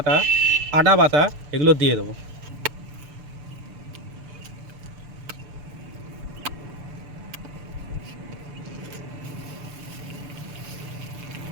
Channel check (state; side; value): late; left; 6.9 ms